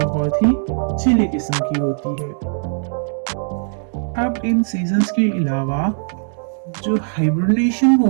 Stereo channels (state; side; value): silent; left; digital silence